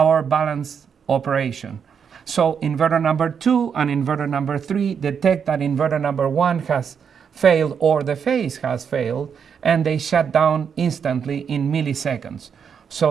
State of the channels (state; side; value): quieter; left; 7.1 dB